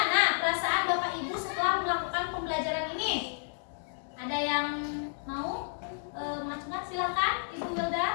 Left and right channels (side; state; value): right; silent; digital silence